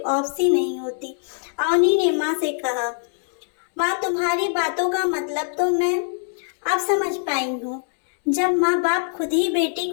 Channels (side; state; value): right; silent; 63 dB below the other